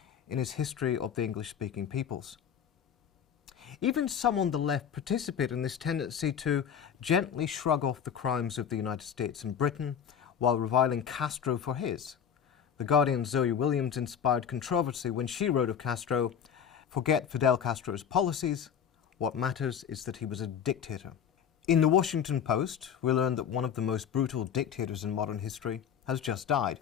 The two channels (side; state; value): right; quieter; 8.1 dB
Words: in his History of the English-Speaking Peoples. Even some on the left participate in this tendency to gently shrug off the crimes of the United States and Britain while reviling Castro for his. The Guardian's Zoe Williams inspired controversy when she wrote of Castro, "Forget Fidel Castro's policies. What matters is that he was a dictator." In the Washington Post, we learned that one of the most brutal dictators in modern history has just died.